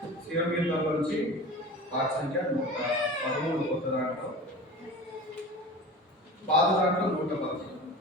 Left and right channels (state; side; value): normal; both; correlation 0.35